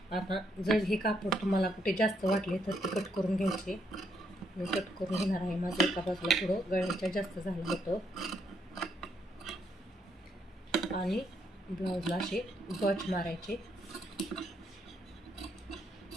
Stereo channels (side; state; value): both; normal; correlation 0.75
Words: आता जर हे कापड तुम्हाला कुठे जास्त वाटले तर ते कट करून घ्यायचे. मी कट करून घेणार आहे. माझं एका बाजूला थोडं गळ्याच्या जास्त झालं होतं आणि ब्लाऊजला असे गच मारायचे.